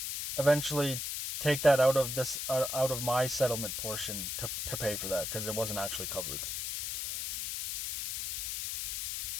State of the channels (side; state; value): left; noise; hiss, 3 dB below the sound